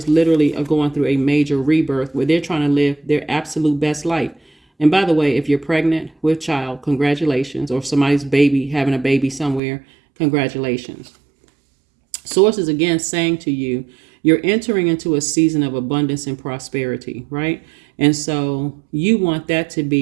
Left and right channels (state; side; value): drops out; left; at 9.6 s